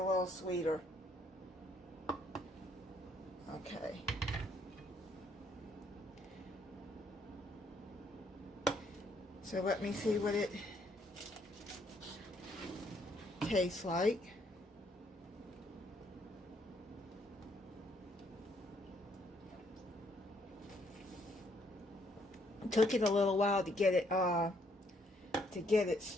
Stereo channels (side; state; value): both; normal; correlation 0.69